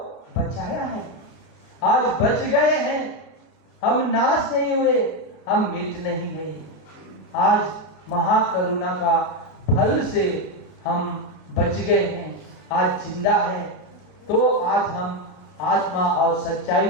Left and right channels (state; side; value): late; right; 32 ms